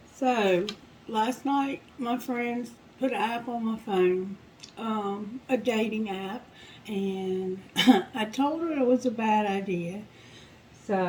So, last night my friends put an app on my phone, a dating app, and I told her it was a bad idea.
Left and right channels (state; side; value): identical; both; correlation 1.00